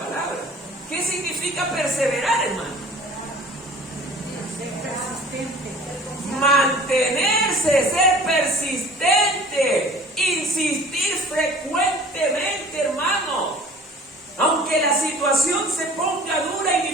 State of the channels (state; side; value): normal; both; correlation 0.46